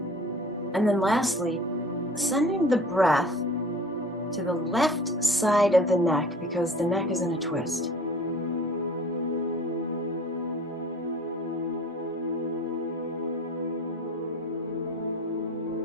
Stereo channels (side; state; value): both; normal; correlation 0.44